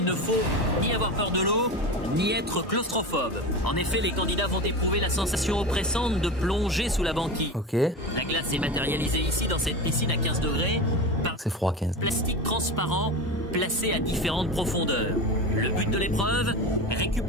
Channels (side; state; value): both; normal; correlation 0.26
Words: ne faut ni avoir peur de l'eau, ni être claustrophobe. En effet, les candidats vont éprouver la sensation oppressante de plonger sous la banquise. Ok. La glace est matérialisée ici dans cette piscine à 15 degrés par C'est froid 15. plastique transparent placé à différentes profondeurs. Le but de l'épreuve,